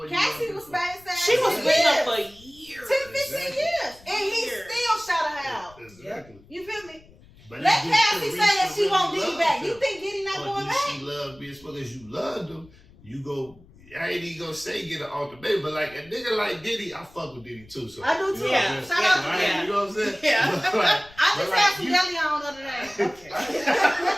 Cassie you was love him? back. She was with him for years. 10, 15 years. And he still shot her out. Exactly. You feel me? But Let do Cassie say that she really won't Diddy love back. him? You think Diddy not Or going do back? she love me as well as you loved him? You go. I ain't even gonna say get an ultimatum, but like a nigga like Diddy, I fuck with Diddy too. So I do too. You know what I'm saying? Shout out to Right? Diddy. You know what I'm saying? Yeah. But like, I just but had like some you- deli on the other day.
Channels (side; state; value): left; noise; rumble, 25 dB below the sound